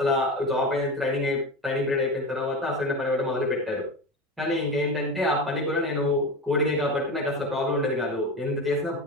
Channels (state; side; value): normal; both; correlation 0.24